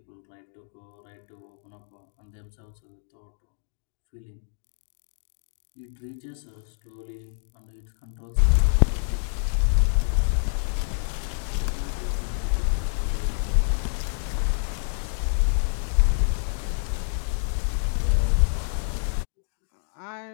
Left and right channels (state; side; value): silent; right; digital silence